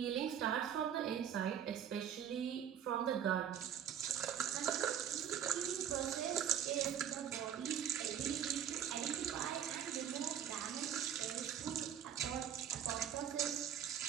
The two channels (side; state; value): left; quieter; 9.2 dB